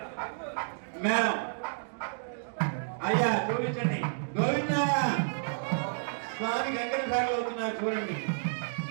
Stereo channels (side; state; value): left; silent; digital silence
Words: అయ్యా చూపించండి. గోవిందా స్వామి వెంకటేశ్వర అవుతున్నారు చూడండి.